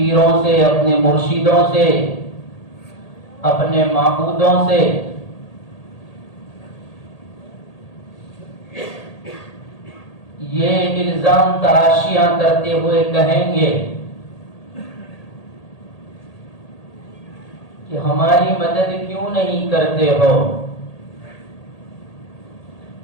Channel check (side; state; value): right; late; 1.8 ms